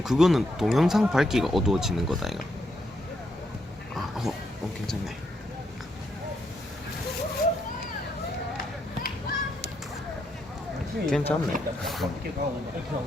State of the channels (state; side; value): normal; both; correlation 0.78